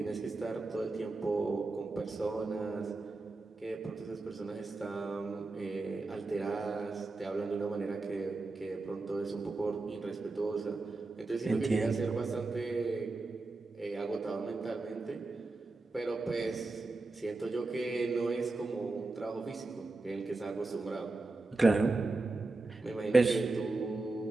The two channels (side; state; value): left; quieter; 3.3 dB